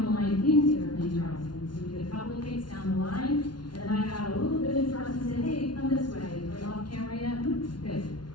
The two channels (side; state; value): right; late; 0.70 ms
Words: the line into Airplane Charleston. So we did a couple of kicks down the line, and then I got a little bit in front and said, hey, come this way. Are you off camera yet? Good.